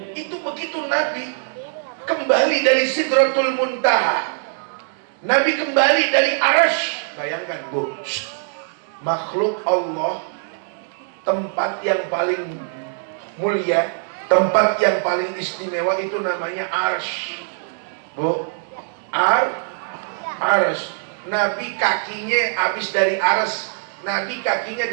Itu begitu Nabi kembali dari Sidratul Muntaha, Nabi kembali dari Arsy. Bayangkan Bu, makhluk Allah, tempat yang paling mulia, tempat yang paling istimewa itu namanya Arsy. Bu, Arsy. Nabi kakinya habis dari Arsy. Nabi kakinya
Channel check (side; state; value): left; silent; digital silence